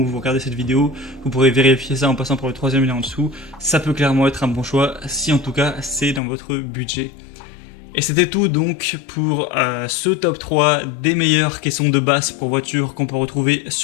où vous regardez cette vidéo, vous pourrez vérifier ça en passant par le troisième lien en dessous. Ça peut clairement être un bon choix, si en tout cas c'est dans votre budget. Et c'était tout donc pour ce top 3 des meilleures caissons de base pour voitures qu'on peut retrouver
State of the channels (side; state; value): right; drops out; at 6.2 s